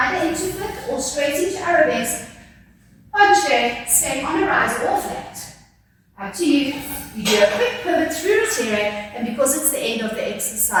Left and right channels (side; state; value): both; identical; correlation 1.00